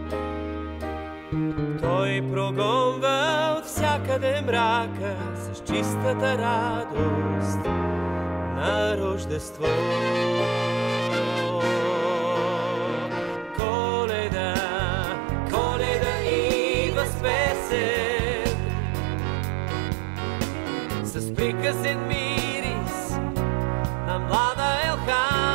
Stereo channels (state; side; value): drops out; left; at 13.6 s